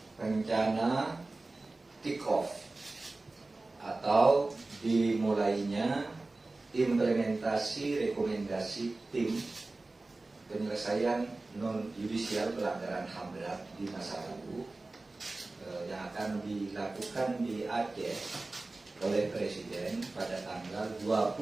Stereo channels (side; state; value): left; quieter; 3.2 dB